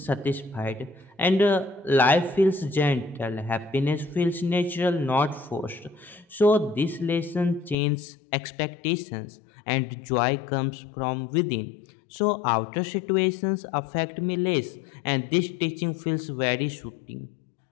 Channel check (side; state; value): right; drops out; at 7.8 s